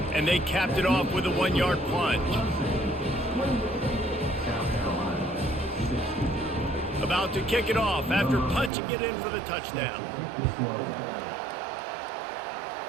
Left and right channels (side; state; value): left; drops out; at 8.7 s